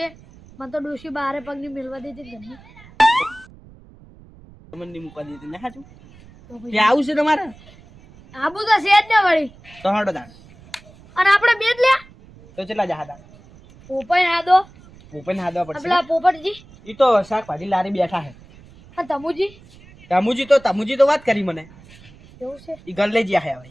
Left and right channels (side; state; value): right; noise; rumble, 23 dB below the sound